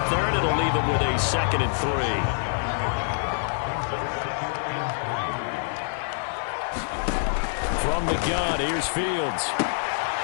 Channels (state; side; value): silent; right; digital silence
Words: there, and it'll leave him with a 2nd and 3. From the gun, here's Fields.